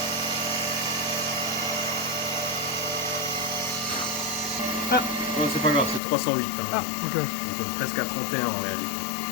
Ah. Non, c'est pas grave, c'est 308. Hein. Ah, ok. Donc on est presque à 31 en réalité.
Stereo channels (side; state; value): right; drops out; at 6.0 s